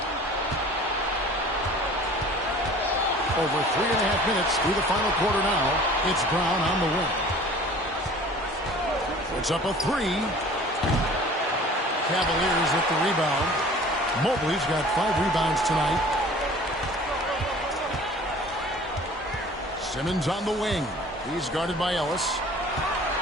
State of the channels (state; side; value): normal; both; correlation 0.47